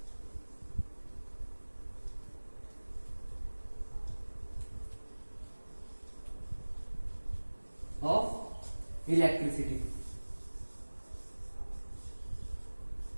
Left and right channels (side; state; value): both; inverted; correlation -1.00